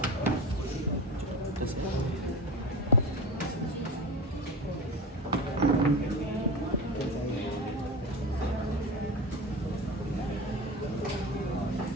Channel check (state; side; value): normal; both; correlation 0.27